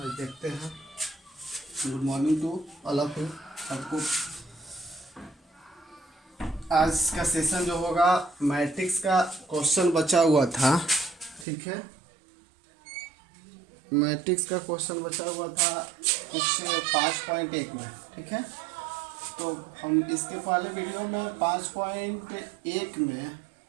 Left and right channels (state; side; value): drops out; left; at 11.5 s